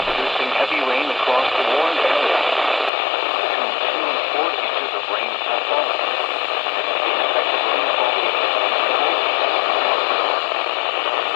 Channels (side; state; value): right; drops out; at 2.9 s